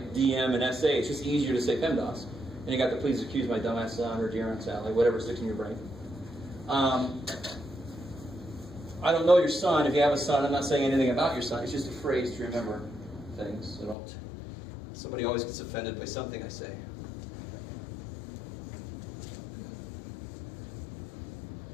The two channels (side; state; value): right; drops out; at 14.0 s